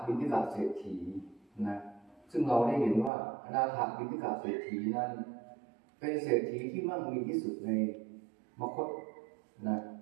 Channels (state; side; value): drops out; left; at 3.1 s